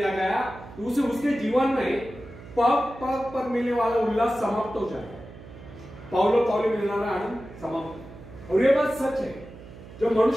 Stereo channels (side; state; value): right; noise; hum, 17 dB below the sound